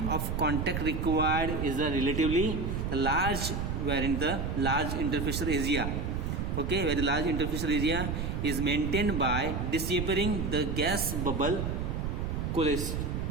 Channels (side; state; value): right; noise; rumble, 2 dB below the sound